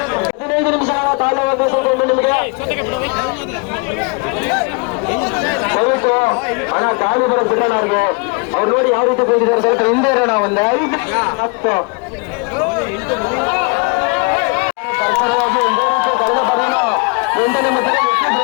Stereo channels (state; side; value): quieter; right; 31.9 dB